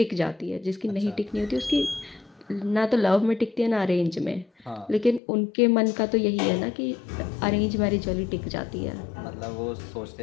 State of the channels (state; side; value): drops out; right; at 5.2 s